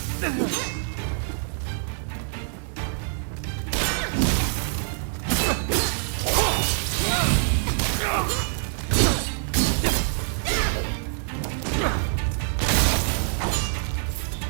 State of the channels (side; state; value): left; silent; 60 dB below the other